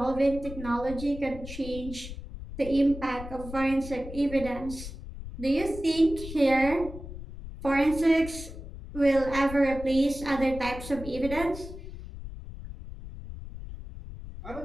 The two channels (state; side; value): noise; left; rumble, 11 dB below the sound